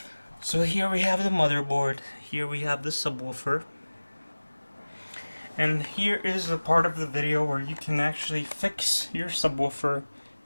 So here we have the motherboard, here we have the subwoofer, and here is the part of the video where you can actually fix your subwoofer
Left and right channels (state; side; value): inverted; both; correlation -1.00